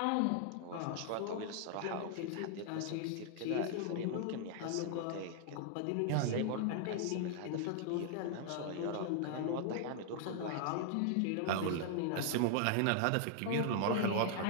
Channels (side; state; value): both; different; correlation 0.00